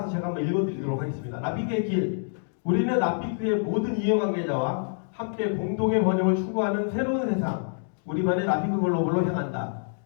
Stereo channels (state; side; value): silent; right; digital silence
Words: 제가 한번 읽어드리도록 하겠습니다. 라피크의 길. 우리는 라피크의 모든 이해관계자와 함께 공동의 번영을 추구하는 새로운 세상, 우리만의 라피크 글로벌로 향한다.